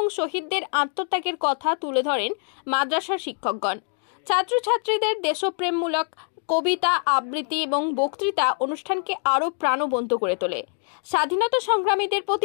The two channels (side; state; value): right; silent; 55 dB below the other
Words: শহীদদের আত্মত্যাগের কথা তুলে ধরেন মাদ্রাসার শিক্ষকগণ। ছাত্রছাত্রীদের দেশপ্রেমমূলক কবিতা, আবৃত্তি এবং বক্তৃতা অনুষ্ঠানকে আরও প্রাণবন্ত করে তোলে। স্বাধীনতা সংগ্রামীদের